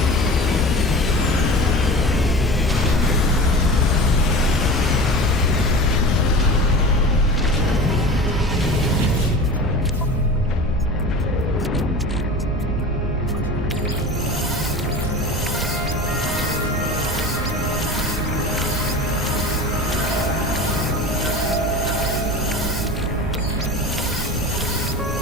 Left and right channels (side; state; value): both; normal; correlation 0.34